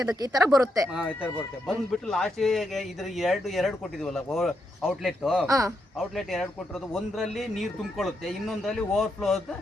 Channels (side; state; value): both; normal; correlation 0.81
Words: ಈ ತರ ಬರುತ್ತೆ. ಬಂದ್ಬಿಟ್ಟು ಲಾಸ್ಟ್ ಇದ್ರ ಎರಡು ಕೊಟ್ಟಿದೀವಲ್ಲ ಔಟ್ಲೆಟ್ 2 ಕೊಟ್ಟಿರೋದು, ಒಂದ್ರಲ್ಲಿ ನೀರ್ ತುಂಬಿಕೊಳ್ಳುತ್ತೆ, ಇನ್ನೊಂದ್ರಲ್ಲಿ ಓವರ್ಫ್ಲೋ